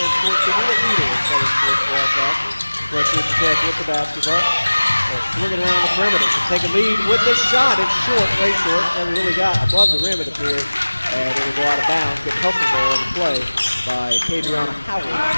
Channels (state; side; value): inverted; both; correlation -1.00